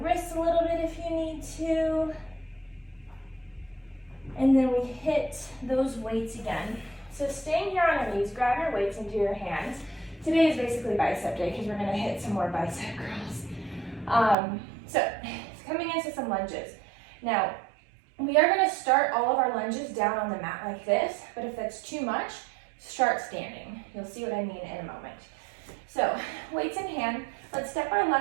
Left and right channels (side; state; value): left; drops out; at 14.4 s